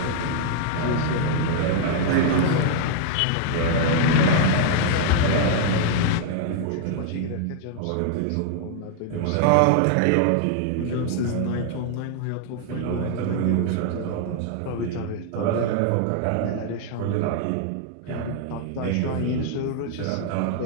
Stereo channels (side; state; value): both; different; correlation 0.00